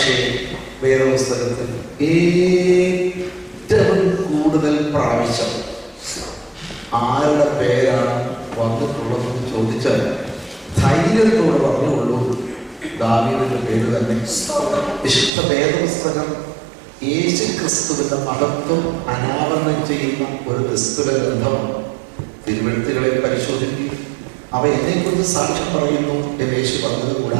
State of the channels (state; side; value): drops out; left; at 15.3 s